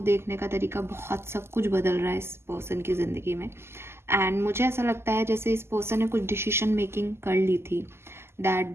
देखने का तरीका, बहुत सब कुछ बदल रहा है इस पर्सन की ज़िंदगी में। एंड मुझे ऐसा लगता है जैसे इस पर्सन ने कुछ डिसीजन मेकिंग कर ली थी, दैट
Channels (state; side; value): late; left; 0.12 ms